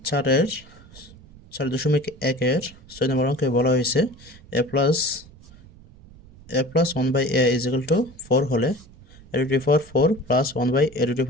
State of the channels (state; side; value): noise; right; rumble, 22 dB below the sound